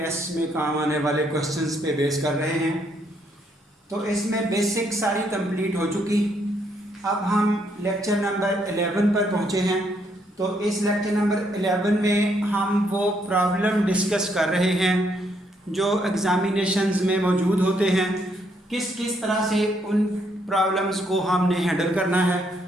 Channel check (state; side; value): normal; both; correlation 0.73